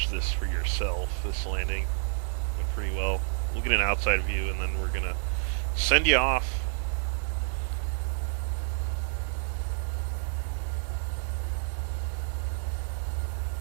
this for yourself. This landing went pretty well. We'll get an outside view, and then we're going to send you off.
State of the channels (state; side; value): silent; left; 58 dB below the other